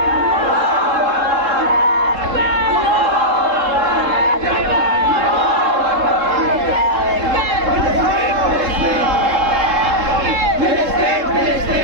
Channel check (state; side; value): late; left; 3.7 ms